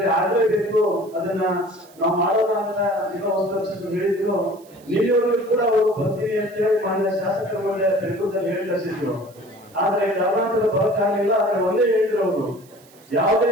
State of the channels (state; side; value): noise; right; hiss, 27 dB below the sound